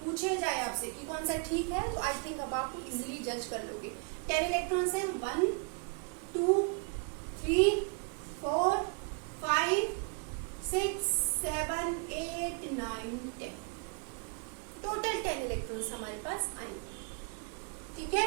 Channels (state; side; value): quieter; left; 36.7 dB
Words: पूछे जाए आपसे कि कौन सा ठीक है, तो आई थिंक अब आप इजीली जज कर लोगे। 10 इलेक्ट्रॉन्स हैं, 1 2 3 4 5 6 7 8 9 10, टोटल 10 इलेक्ट्रॉन्स हमारे पास आएंगे। ठीक है,